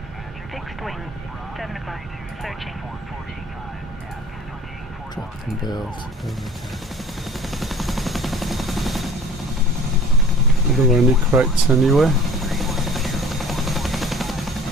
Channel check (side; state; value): both; normal; correlation 0.45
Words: Fixed wing. 7 o'clock. Searching. Drop and build. Are there any crates anywhere?